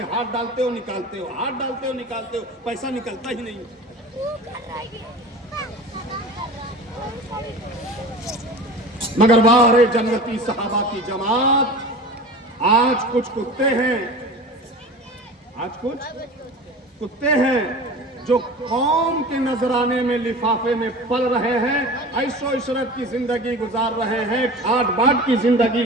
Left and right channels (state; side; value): normal; both; correlation 0.36